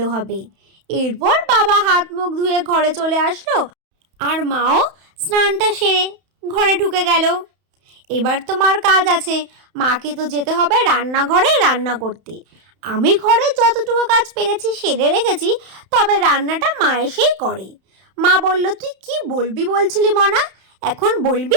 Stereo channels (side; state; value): left; late; 31 ms